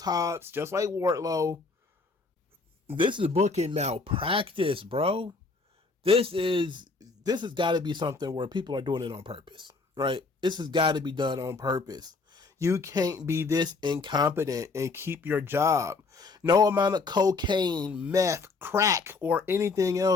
Hobbs, just like Wardlow. This is booking malpractice, bro. This has got to be something where people are doing it on purpose, right? This has got to be done on purpose. You can't be this incompetent and keep your job. No amount of cocaine, meth, crack, or anything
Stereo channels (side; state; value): right; quieter; 4.0 dB